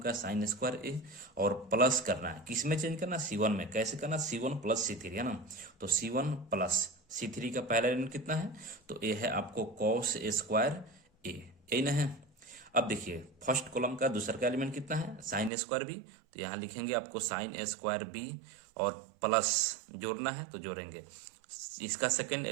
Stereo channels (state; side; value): drops out; left; at 15.5 s